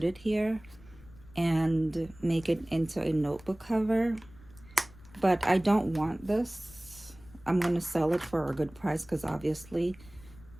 it here and make it into a notebook cover. But I don't want this. I'm going to sell it for a good price, because obviously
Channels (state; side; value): noise; left; rumble, 22 dB below the sound